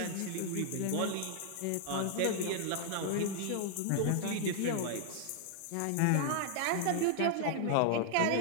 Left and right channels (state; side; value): different; both; correlation -0.01